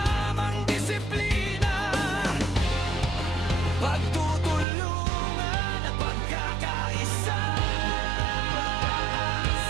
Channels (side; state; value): left; drops out; at 4.7 s